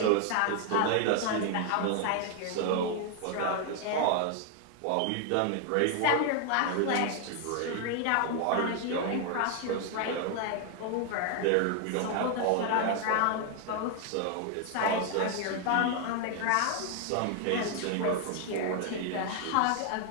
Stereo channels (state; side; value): different; both; correlation 0.00